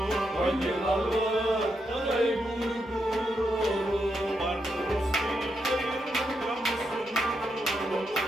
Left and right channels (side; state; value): both; normal; correlation 0.82